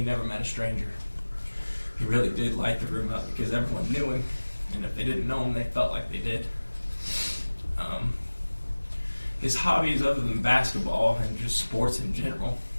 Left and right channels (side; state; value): both; inverted; correlation -1.00